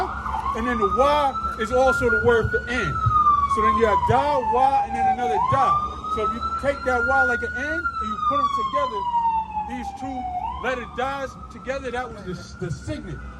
and then the Y is also the word for N. So then you have Da, Y, and then another Da. So if you take that Y like an N, and you put them together, these two letter Da's together, that was the signet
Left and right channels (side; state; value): both; identical; correlation 1.00